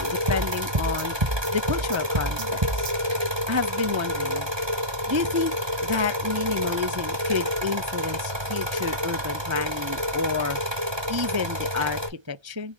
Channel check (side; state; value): left; late; 1.3 ms